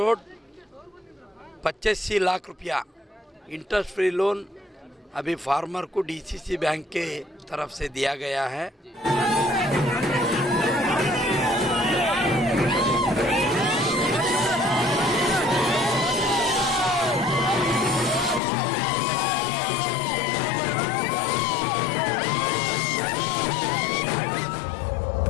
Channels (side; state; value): right; drops out; at 18.4 s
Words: 85 लाख रुपया interest free loan अभी फार्मर को डीसीसी बैंक के तरफ से दिया गया है।